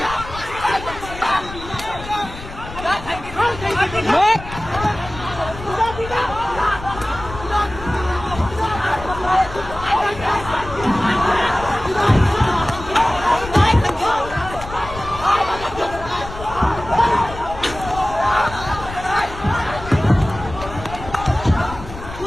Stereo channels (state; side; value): noise; left; rumble, 12 dB below the sound